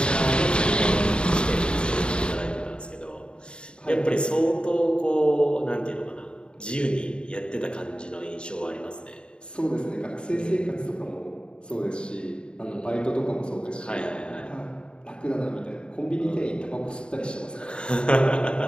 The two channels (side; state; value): right; late; 0.052 ms